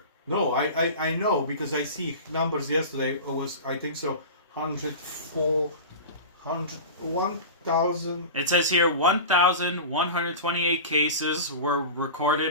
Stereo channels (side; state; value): both; inverted; correlation -0.31